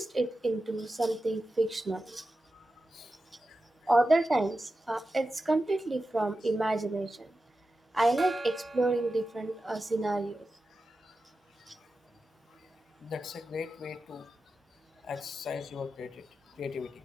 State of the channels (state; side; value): normal; both; correlation 0.92